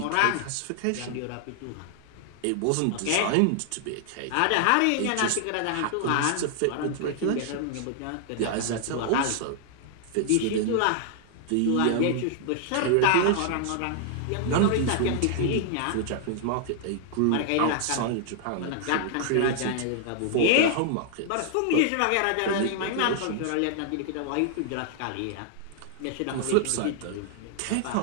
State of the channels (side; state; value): both; different; correlation 0.00